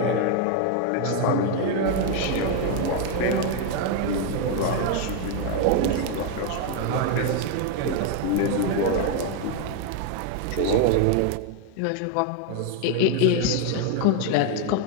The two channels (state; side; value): different; both; correlation 0.01